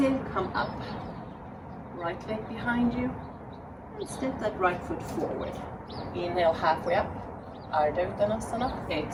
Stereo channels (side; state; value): both; identical; correlation 1.00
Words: Come up. Right leg behind you. And step that right foot forward. Inhale halfway up. Ardha Uttanasana.